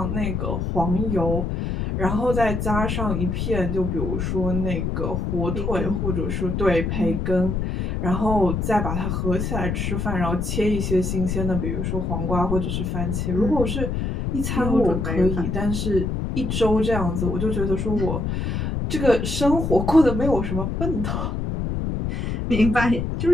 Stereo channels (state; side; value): noise; left; rumble, 1 dB below the sound